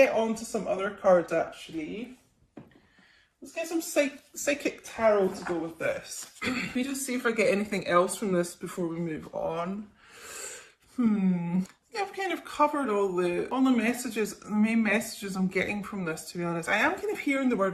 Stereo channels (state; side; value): identical; both; correlation 1.00